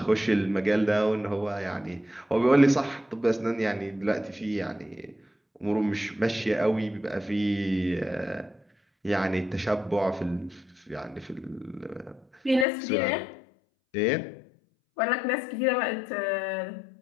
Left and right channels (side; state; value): right; drops out; at 12.7 s